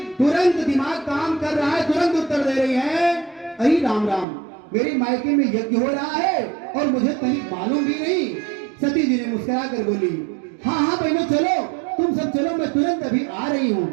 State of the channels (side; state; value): left; drops out; at 4.2 s